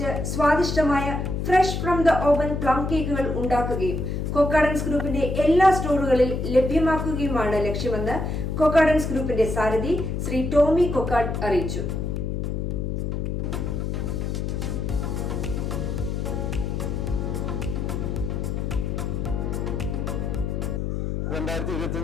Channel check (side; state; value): left; noise; hum, 2 dB below the sound